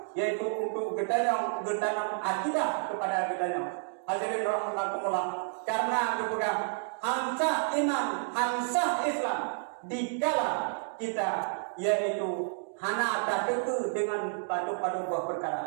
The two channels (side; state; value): left; silent; digital silence